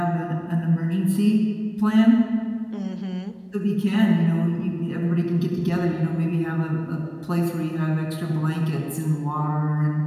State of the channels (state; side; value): identical; both; correlation 1.00